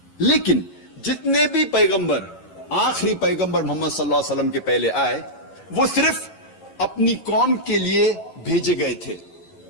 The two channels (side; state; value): right; late; 11 ms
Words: لیکن جتنے بھی پیغمبر آخری پیغمبر محمد صلی اللہ علیہ وسلم کے پہلے آئے وہ صرف اپنی قوم کے لیے بھیجے گئے تھے